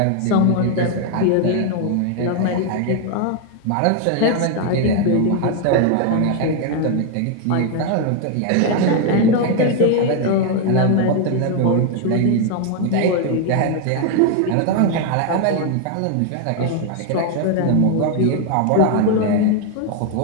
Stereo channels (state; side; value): different; both; correlation 0.00